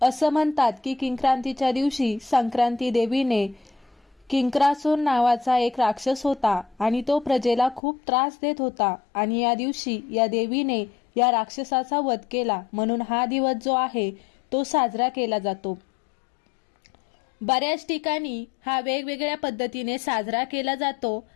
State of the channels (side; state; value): right; drops out; at 7.8 s